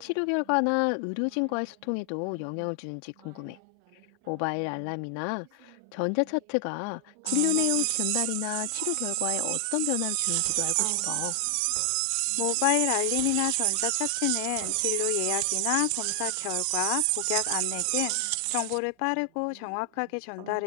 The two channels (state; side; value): different; both; correlation 0.00